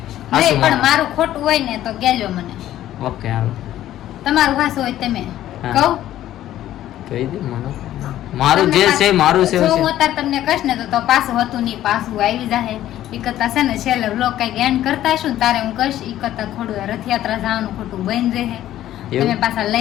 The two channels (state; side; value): quieter; right; 13.0 dB